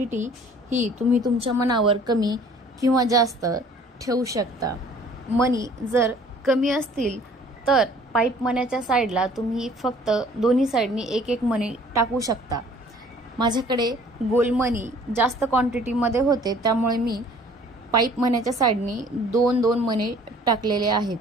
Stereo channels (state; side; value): normal; both; correlation 0.53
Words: ही तुम्ही तुमच्या मनावर कमी किंवा जास्त ठेवू शकता। मणी जर कमी असतील तर पाईप मण्याच्या साइडला तुम्ही फक्त दोन्ही साइडनी 1-1 मणी टाकू शकता। माझ्याकडे गोल मणी जास्त क्वांटिटी मध्ये होते, त्यामुळे मी पाईप मण्याच्या साइडनी 2-2 मणी टाकलेले